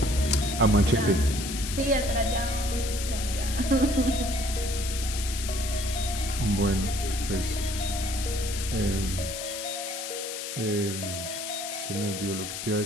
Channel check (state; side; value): noise; left; hiss, 6 dB below the sound